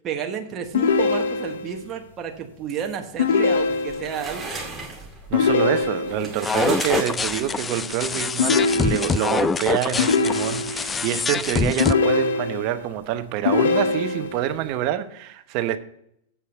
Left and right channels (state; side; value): normal; both; correlation -0.14